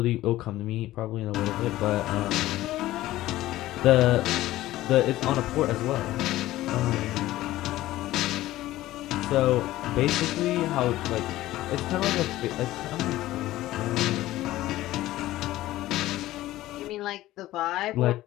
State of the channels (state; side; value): quieter; right; 15.8 dB